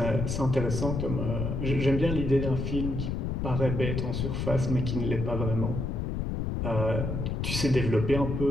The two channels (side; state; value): left; noise; rumble, 2 dB below the sound